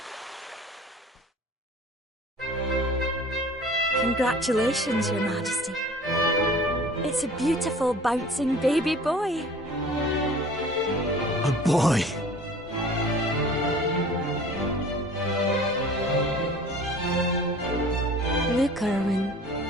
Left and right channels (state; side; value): normal; both; correlation 0.46